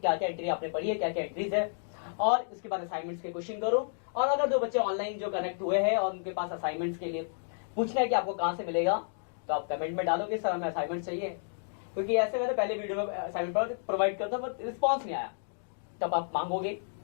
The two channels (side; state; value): right; silent; digital silence